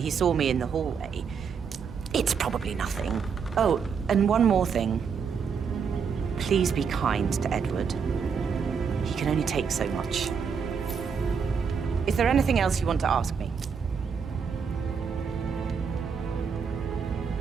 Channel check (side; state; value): left; quieter; 6.3 dB